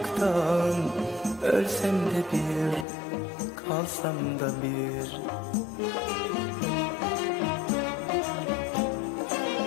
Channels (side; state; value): right; drops out; at 2.9 s